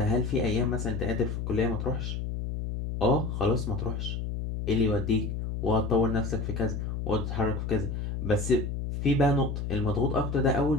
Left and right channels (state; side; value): noise; left; hum, 4 dB below the sound